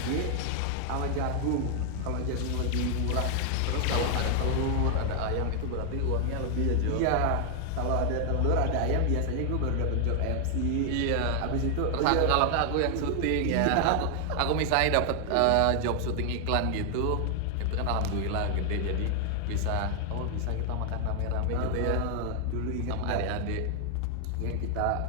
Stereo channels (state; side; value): different; both; correlation 0.00